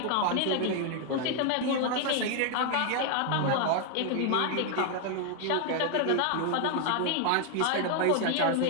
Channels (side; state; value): both; different; correlation 0.00